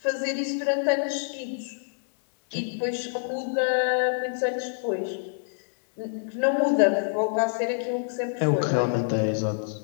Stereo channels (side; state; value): right; silent; digital silence